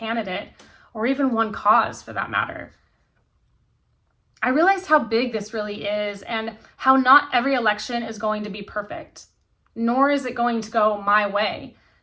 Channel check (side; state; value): both; identical; correlation 1.00